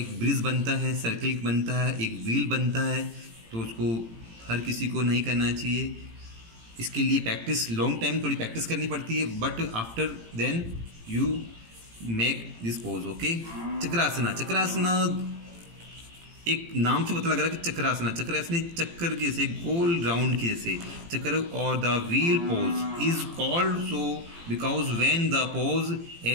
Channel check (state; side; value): late; left; 18 ms